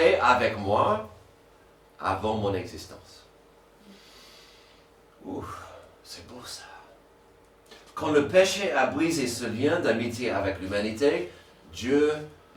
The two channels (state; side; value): identical; both; correlation 1.00